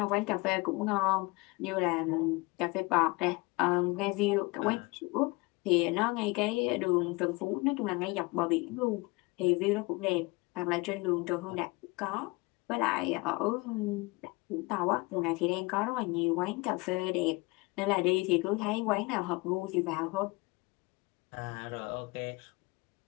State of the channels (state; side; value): quieter; right; 24.8 dB